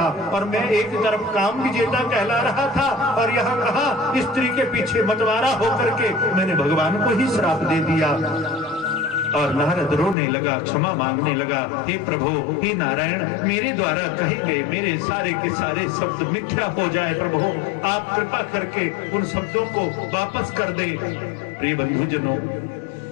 और मैं एक तरफ काम विजेता कहला रहा था और यहाँ कहा स्त्री के पीछे मतवारा होकर के मैंने भगवान को ही श्राप दे दिया। और नारद रोने लगा, क्षमा मांगने लगा। हे प्रभु, हे नारायण, मेरे द्वारा कहे गए मेरे सारे के सारे शब्द मिथ्या हो जाए प्रभु, आप कृपा करके उन शब्दों को वापस कर दे। प्रिय बंधुजनों,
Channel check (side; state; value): right; drops out; at 10.2 s